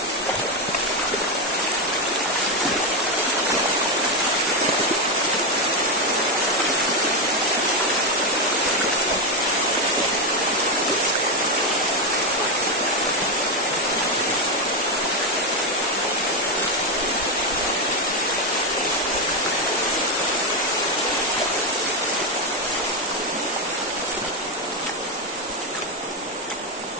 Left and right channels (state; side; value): normal; both; correlation 0.07